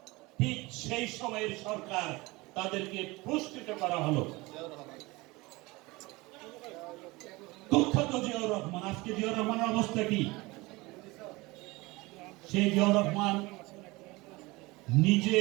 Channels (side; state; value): left; quieter; 22.5 dB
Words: ঠিক সেই সময়ের সরকার তাদেরকে পুরস্কৃত করা হলো। কুখ্যাত জিয়াউর রহমান, আজকে জিয়াউর রহমানের অবস্থা কি? সেই জিয়াউর রহমান নিজে